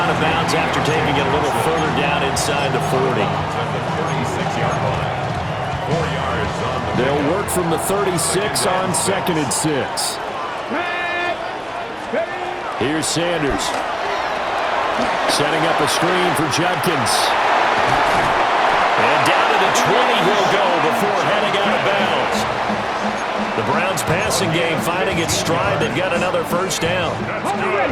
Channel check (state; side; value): identical; both; correlation 1.00